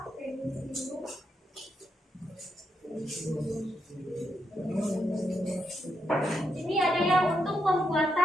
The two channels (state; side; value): normal; both; correlation 0.81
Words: Ini ada yang untuk